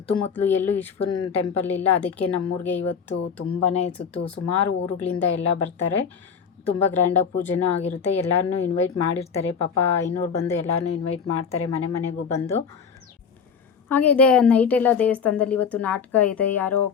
ಎಲ್ಲೂ ಈಶ್ವರನ ಟೆಂಪಲ್ ಇಲ್ಲ, ಅದಕ್ಕೆ ನಮ್ಮೂರಿಗೆ ಇವತ್ತು ತುಂಬಾ ಸುಮಾರು ಊರುಗಳಿಂದ ಎಲ್ಲ ಬರ್ತಾರೆ. ತುಂಬ ಗ್ರ್ಯಾಂಡಾಗಿ ಪೂಜೆನೂ ಆಗಿರುತ್ತೆ. ಎಲ್ಲರನ್ನೂ ಇನ್ವೈಟ್ ಮಾಡಿರ್ತಾರೆ. ಪಾಪ ಐನೂರು ಬಂದು ಎಲ್ಲರನ್ನೂ ಇನ್ವೈಟ್ ಮಾಡ್ತಾರೆ, ಮನೆ ಮನೆಗೂ ಬಂದು. ಹಾಗೆ ಇದೆ ನೈಟೆಲ್ಲ ದೇವಸ್ಥಾನದಲ್ಲಿ ಇವತ್ತು ನಾಟಕ ಇದೆ. ಯಾರೋ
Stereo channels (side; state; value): right; quieter; 6.5 dB